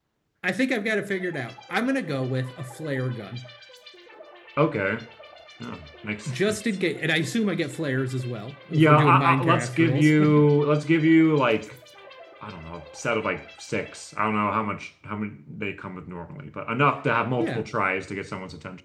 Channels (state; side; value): identical; both; correlation 1.00